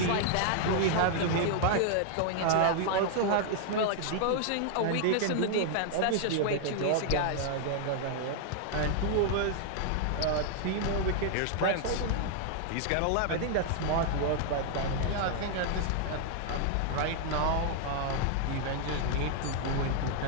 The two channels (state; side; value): different; both; correlation 0.00